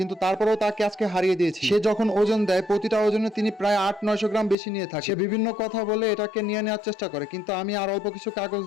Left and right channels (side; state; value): right; drops out; at 4.5 s